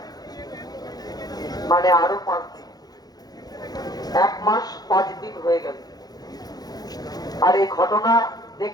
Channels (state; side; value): late; right; 0.19 ms